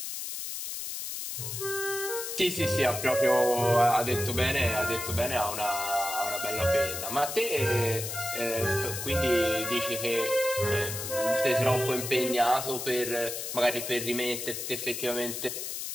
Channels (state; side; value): noise; left; hiss, 5 dB below the sound